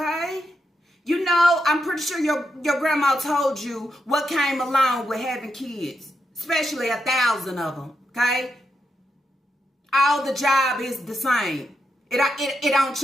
You know, I'm pretty sure your grandma told you what came along with having kids, especially 1,000 of them, okay? All the job is the same. It don't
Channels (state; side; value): normal; both; correlation 0.84